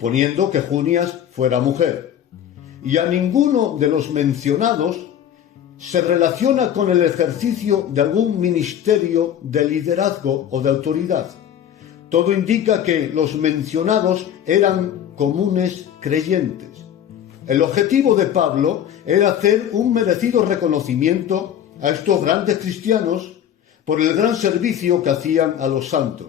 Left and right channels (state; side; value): quieter; right; 9.9 dB